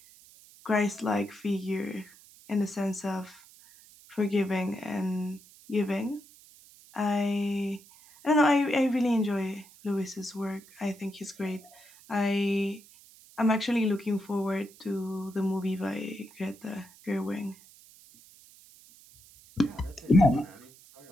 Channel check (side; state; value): right; noise; hiss, 24 dB below the sound